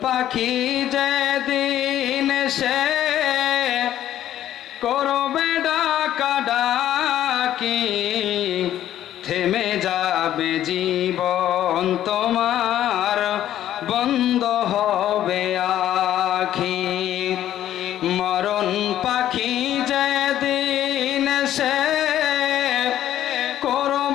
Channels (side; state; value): right; quieter; 12.0 dB